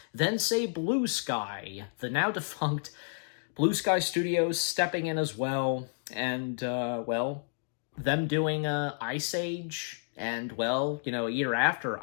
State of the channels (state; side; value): silent; right; digital silence